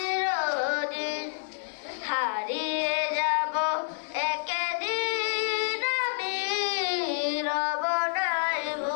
হারিয়ে যাব একদিন আমি, রব নাই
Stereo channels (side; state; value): right; silent; 59 dB below the other